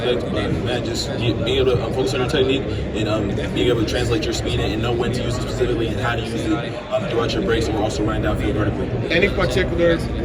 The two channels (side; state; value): both; identical; correlation 1.00